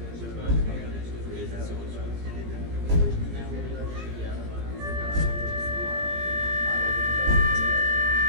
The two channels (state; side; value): late; left; 17 ms